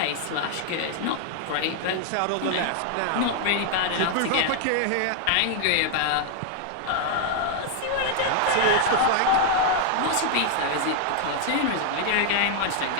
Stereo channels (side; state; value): both; different; correlation 0.00